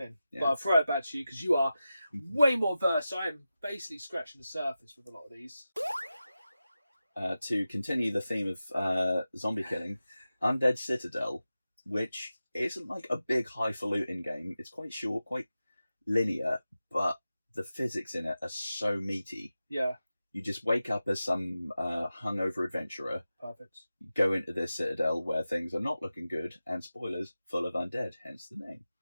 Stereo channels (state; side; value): inverted; both; correlation -0.93